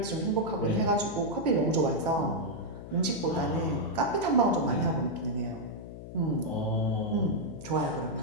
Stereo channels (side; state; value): left; noise; hum, 12 dB below the sound